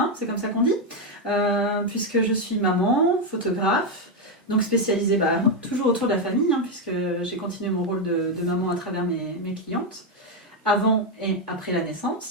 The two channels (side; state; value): both; normal; correlation 0.04